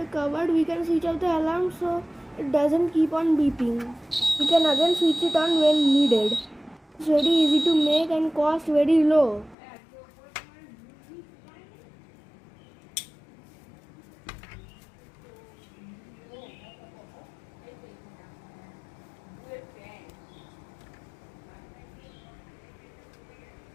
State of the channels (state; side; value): drops out; right; at 9.6 s